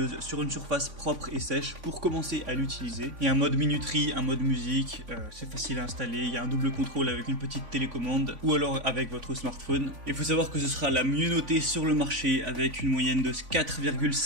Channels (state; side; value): late; left; 3.5 ms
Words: sur une surface propre et sèche pour commencer à l'utiliser. Il y a un mode minuterie, un mode musique, c'est facile à installer, il y a un double contrôle avec une petite télécommande ou alors avec votre smartphone. Il faut savoir que ce sera la mieux notée sur le marché avec une moyenne de